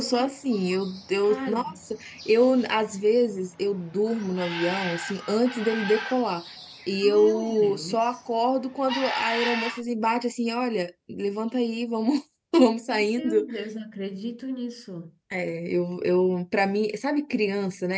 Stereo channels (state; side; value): identical; both; correlation 1.00